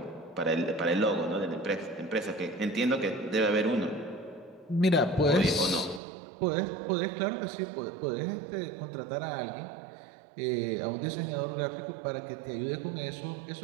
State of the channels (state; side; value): drops out; left; at 6.0 s